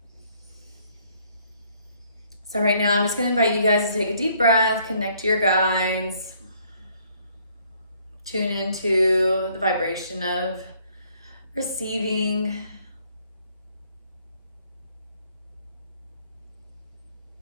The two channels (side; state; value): both; inverted; correlation -0.65